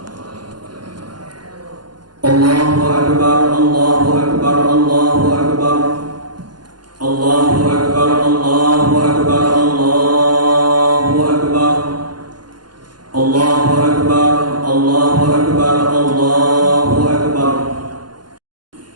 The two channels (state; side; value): late; left; 0.71 ms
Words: Allahu akbar, Allahu akbar, Allahu akbar. Allahu akbar, Allahu akbar, Allahu akbar. Allahu akbar, Allahu akbar, Allahu akbar.